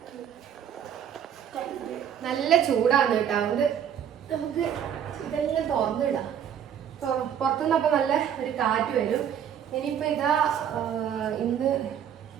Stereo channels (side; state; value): left; quieter; 9.0 dB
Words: നല്ല ചൂടാണ് കേട്ടോ, അതുകൊണ്ട് നമുക്ക് ഇതെല്ലാം തുറന്നിടാം. പുറത്തുനിന്ന് അപ്പൊ നല്ല ഒരു കാറ്റ് വരും. ഇനിയിപ്പോ ഇതാ ഇന്ന്